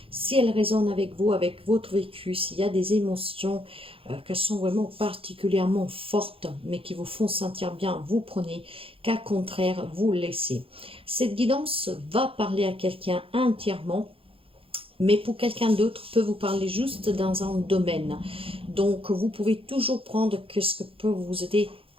Si elle résonne avec vous, avec votre vécu, s'il y a des émotions qui sont vraiment particulièrement fortes, mais qui vous font sentir bien, vous prenez, qu'à contraire, vous laissez. Cette guidance va parler à quelqu'un entièrement, mais pour quelqu'un d'autre peut vous parler juste dans un domaine. Donc, vous pouvez toujours prendre ce que peut vous aider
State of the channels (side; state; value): left; late; 0.27 ms